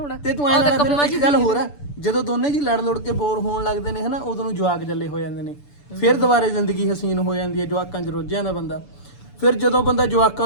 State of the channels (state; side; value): late; right; 6.9 ms